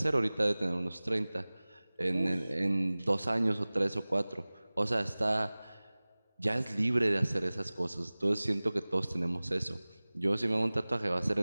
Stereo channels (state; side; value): inverted; both; correlation -0.99